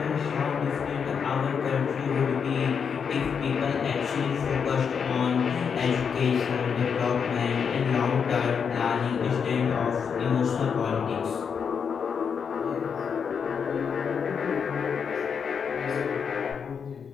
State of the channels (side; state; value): right; quieter; 6.6 dB